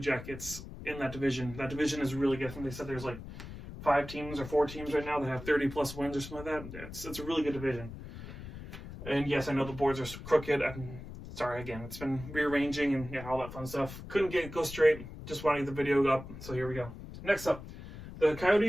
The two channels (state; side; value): noise; left; rumble, 12 dB below the sound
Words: in that division. That division is really good. I think they said there's like 5 teams or 4 teams right now that have 30-plus wins or something like that. It's a really good division. And yes, I know the boards are crooked. I'm sorry, again, it's been rearranging and all that fun stuff. Couldn't go straight. Just wanted the video up, so here we go. Next up, the